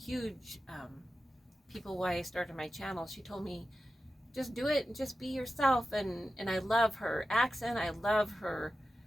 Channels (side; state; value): both; normal; correlation 0.92